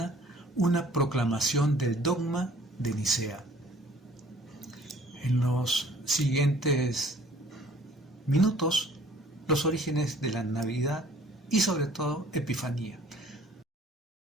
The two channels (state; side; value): normal; both; correlation 0.54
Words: una proclamación del dogma de Nicea. En los siguientes minutos, los orígenes de la Navidad y sobre todo Epifanía.